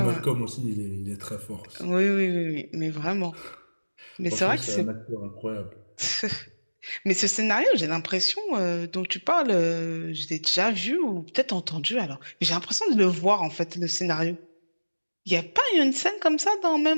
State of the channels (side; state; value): both; inverted; correlation -1.00